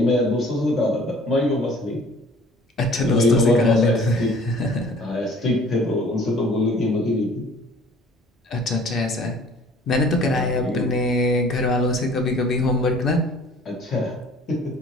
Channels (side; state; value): both; normal; correlation 0.51